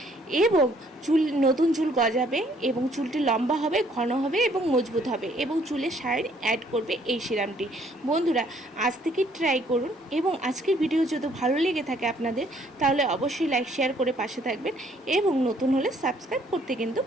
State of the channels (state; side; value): normal; both; correlation 0.64